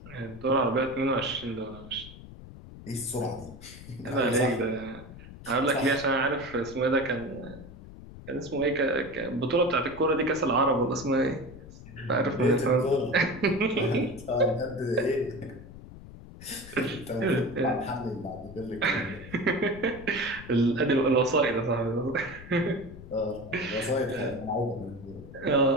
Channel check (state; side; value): noise; left; rumble, 16 dB below the sound